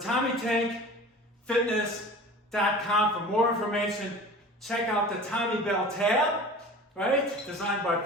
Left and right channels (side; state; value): both; normal; correlation 0.40